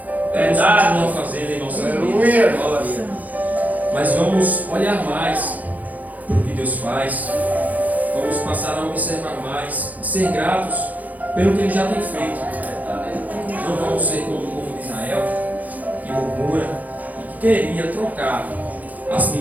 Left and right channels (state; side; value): late; left; 0.079 ms